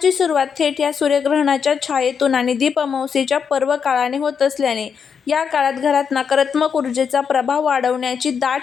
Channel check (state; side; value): quieter; right; 6.7 dB